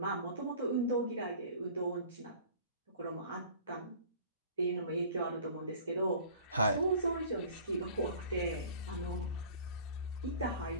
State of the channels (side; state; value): both; inverted; correlation -0.46